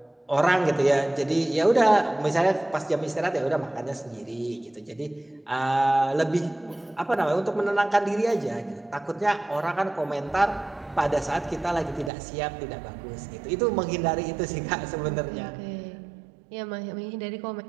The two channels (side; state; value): left; drops out; at 12.1 s